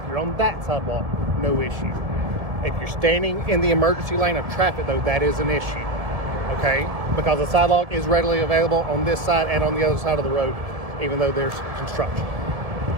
you're on that sidewalk, no issue. If you're standing in the emergency lane of traffic, though, that is an issue. Okay, because the sidewalk is readily available on this side and on the other side of the road, even though there's construction.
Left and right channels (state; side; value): late; left; 1.8 ms